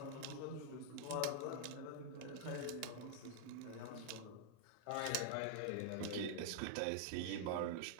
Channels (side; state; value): both; different; correlation -0.01